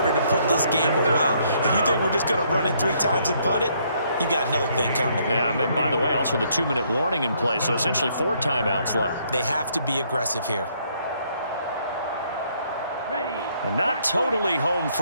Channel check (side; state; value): both; inverted; correlation -0.68